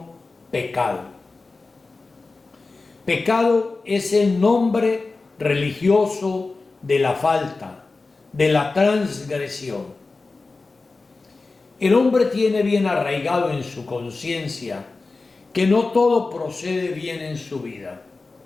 pecado. Pecado es el nombre religioso de la falta, de la transgresión. El hombre tiene bien arraigado en su conciencia que no todo procede bien en su vida,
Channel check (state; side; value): quieter; right; 3.7 dB